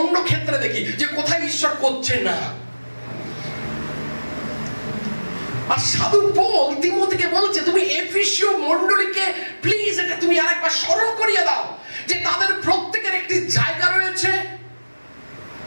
ক্ষেত্রে দেখি যে কোথায় ঈশ্বর করছে না। আর সাধু পৌল তিমোথীকে বলছে, তুমি এফেসীয় মণ্ডলীকে প্লিজ এটা তুমি আরেকবার স্মরণ করিয়ে দাও যে তাদের প্রত্যেকের একটি জায়গা রয়েছে।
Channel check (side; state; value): both; inverted; correlation -1.00